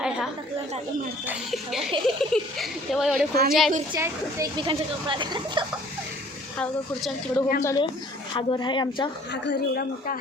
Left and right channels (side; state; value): both; normal; correlation 0.54